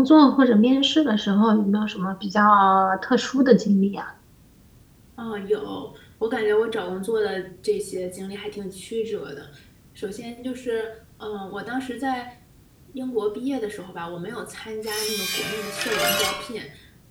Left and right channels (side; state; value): both; identical; correlation 1.00